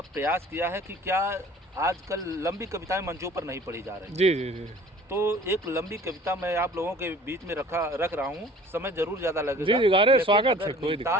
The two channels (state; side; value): normal; both; correlation 0.48